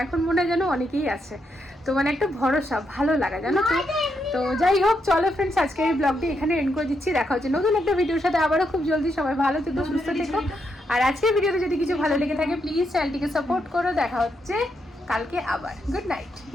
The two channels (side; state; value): both; normal; correlation 0.80